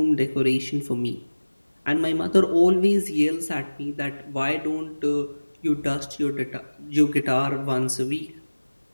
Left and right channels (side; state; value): both; inverted; correlation -1.00